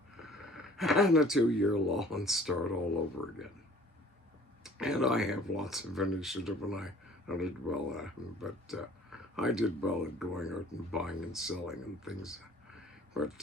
and a 2-year law and start all over again. And I have lots of initiative, and I did well at them, but I did well at going out and buying and selling and things.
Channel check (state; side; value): normal; both; correlation 0.51